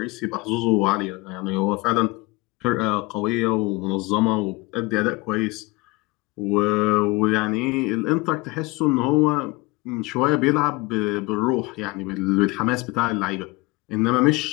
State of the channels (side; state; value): right; quieter; 23.8 dB